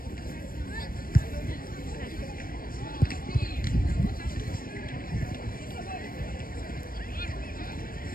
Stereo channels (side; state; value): right; late; 0.41 ms